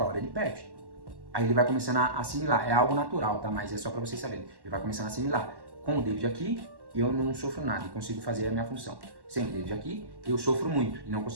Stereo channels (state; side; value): late; left; 1.1 ms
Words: hora ele perde. Aí ele vai começando a assimilar, é algo natural, tá? Mas é só para vocês saberem. Ele vai começando a assimilar. Com o David aqui, eu não sofro nada e consigo fazer a minha função. Sem o David aqui, eu sofro muito e não